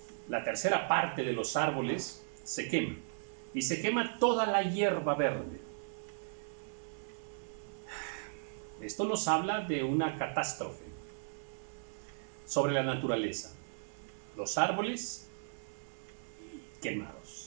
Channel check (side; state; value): left; silent; digital silence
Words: la tercera parte de los árboles se quema, y se quema toda la hierba verde. Esto nos habla de una catástrofe sobre la naturaleza. Los árboles